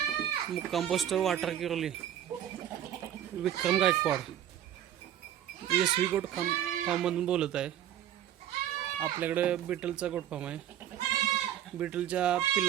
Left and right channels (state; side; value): quieter; left; 11.0 dB